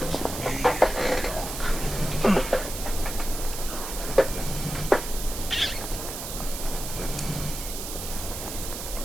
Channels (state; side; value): noise; right; hiss, 7 dB below the sound